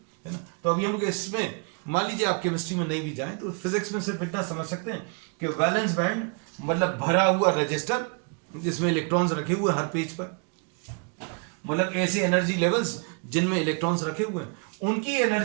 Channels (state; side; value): quieter; left; 36.4 dB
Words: है ना। तो अभी हम लोग इसमें, मान लीजिए आप केमिस्ट्री में नहीं भी जाएं तो फिजिक्स में सिर्फ इतना समझ सकते हैं कि वैलेंस बैंड मतलब भरा हुआ रजिस्टर जिसमें इलेक्ट्रॉन्स रखे हुए हर पेज पर, मतलब ऐसे एनर्जी लेवल्स जिनमें इलेक्ट्रॉन्स रखे हुए हैं, उनकी